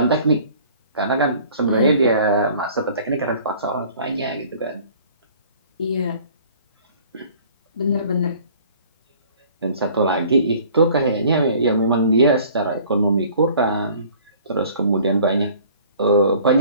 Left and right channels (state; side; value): inverted; both; correlation -0.52